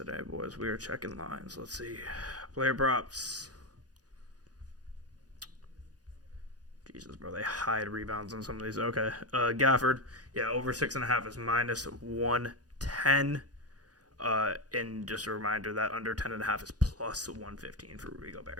boys. We are checking lines. Let's see. Player props. Jesus, bro. They hide rebounds on some of these. Okay. Gafford. Yeah, over 6.5 is minus 110. And just a reminder that under 10.5 is plus 115 for Rudy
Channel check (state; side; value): late; left; 0.68 ms